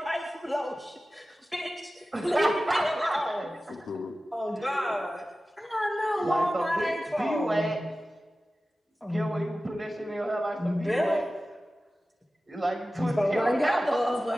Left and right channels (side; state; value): both; normal; correlation 0.95